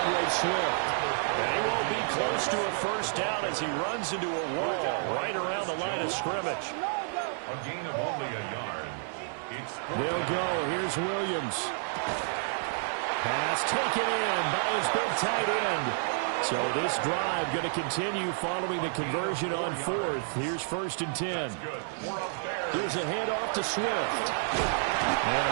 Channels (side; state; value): left; silent; 58 dB below the other